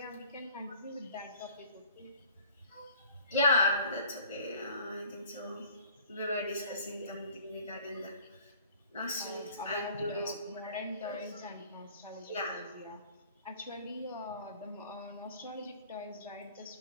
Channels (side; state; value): both; inverted; correlation -0.51